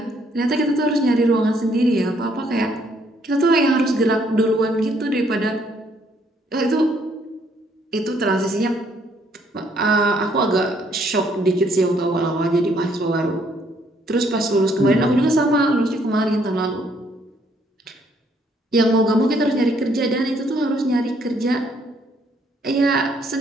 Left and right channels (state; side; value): normal; both; correlation 0.68